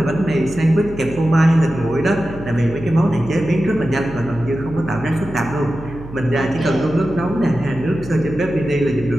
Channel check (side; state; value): right; noise; hum, 14 dB below the sound